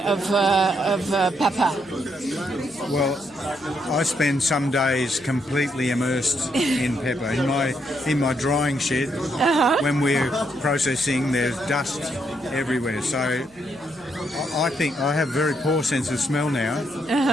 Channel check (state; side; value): noise; right; hum, 28 dB below the sound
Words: of pepper? Well, I spend some days completely immersed in pepper. In my drying shed, when we're processing, there's dust everywhere. So I think I have a very poor sense of smell now,